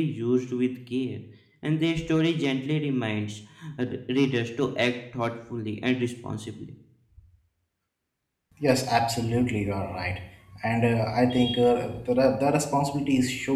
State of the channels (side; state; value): both; identical; correlation 1.00